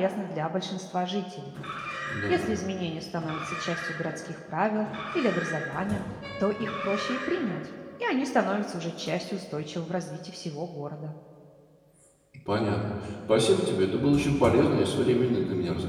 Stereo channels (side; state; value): both; identical; correlation 1.00